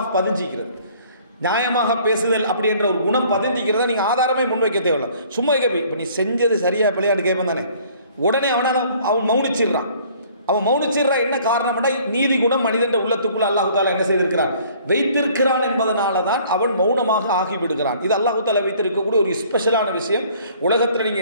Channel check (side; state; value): both; inverted; correlation -0.56